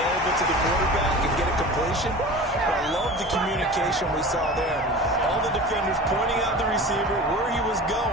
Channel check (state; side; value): normal; both; correlation 0.36